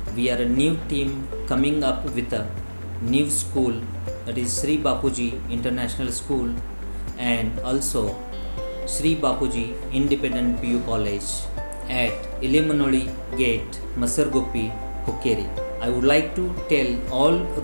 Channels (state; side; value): inverted; both; correlation -1.00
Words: We are a new team coming up with a new school, that is Sri Bapuji International School, and also Sri Bapuji Independent PU College at Yalimunoli Gate, Masarguppi, Hukkeri. I would like to tell all